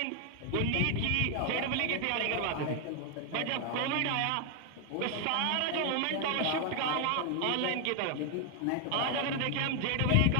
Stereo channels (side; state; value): both; different; correlation 0.01